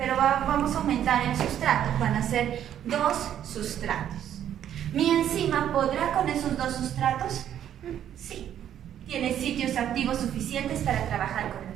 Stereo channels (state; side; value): quieter; left; 10.3 dB